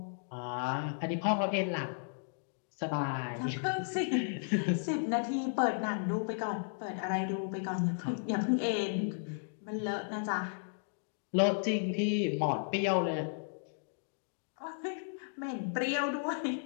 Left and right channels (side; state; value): right; silent; digital silence